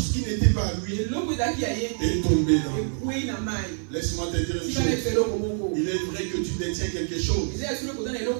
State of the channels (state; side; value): silent; left; 61 dB below the other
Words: qui n'était pas à lui est tombé dans l'eau. Laisse-moi te dire une chose. Il est vrai que tu détiens quelque chose qui